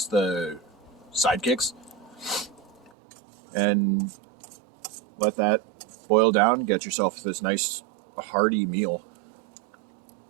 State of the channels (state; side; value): drops out; left; at 2.9 s